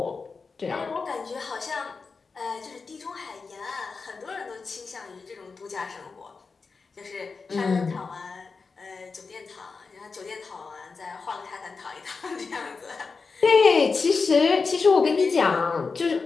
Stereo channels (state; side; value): quieter; right; 4.6 dB